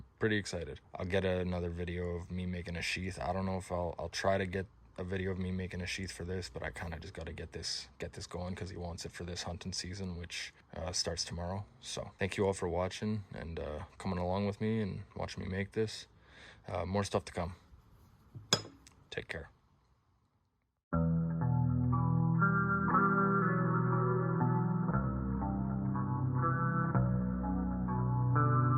pretty excited. I'll get another video of me making a sheath. I don't know if I'll try to get a video of me making a sheath for this, but I kind of just got to get this going because he wants it for this hunting season, which starts tomorrow. So thank you all for watching and coming along with me and watching me make this. More stuff to come. Take care.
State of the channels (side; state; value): both; identical; correlation 1.00